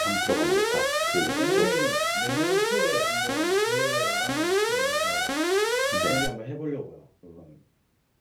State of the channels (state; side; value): identical; both; correlation 1.00